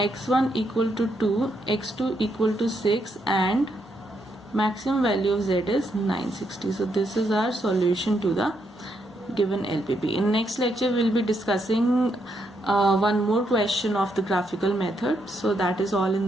equal to 2, x2 equal to 6, and maximum value of z is 960. So this is our solution to the given LPP. In next lecture, we will be discussing one more question of the graphical method. So that is all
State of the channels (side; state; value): both; normal; correlation 0.78